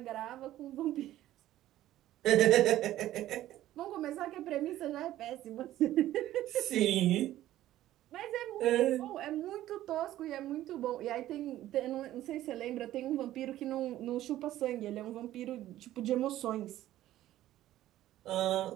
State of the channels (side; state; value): left; quieter; 13.9 dB